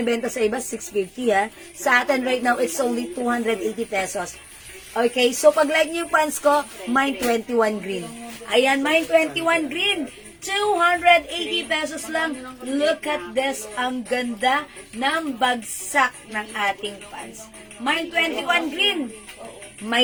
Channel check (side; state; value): both; identical; correlation 1.00